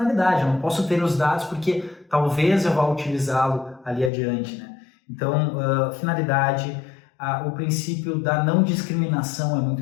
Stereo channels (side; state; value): right; drops out; at 4.1 s